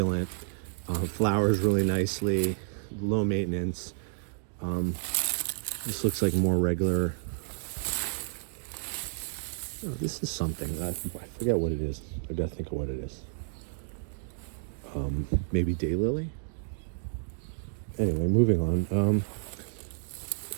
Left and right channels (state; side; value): silent; left; digital silence